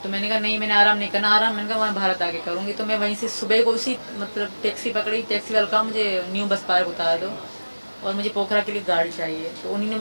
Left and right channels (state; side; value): inverted; both; correlation -1.00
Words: तो मैंने कहा नहीं, मैंने आराम नहीं करना, आराम मैंने कहा वहाँ भारत आके करूँगी। तो मैं वहीं से सुबह को उसी मतलब टैक्सी पकड़ी, टैक्सी वाला कहा मुझे न्यू बस पार्क उतार दो और मुझे पोखरा के लिए गाड़ी चाहिए। तो उन्हीं ने